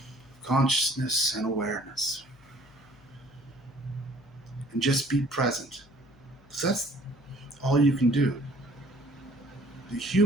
consciousness and awareness. And just be present. Because that's all you can do. The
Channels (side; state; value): left; noise; hum, 27 dB below the sound